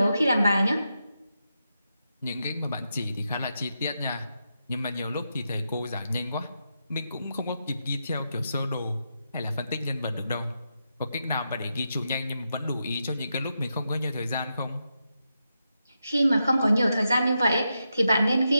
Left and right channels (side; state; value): both; inverted; correlation -0.86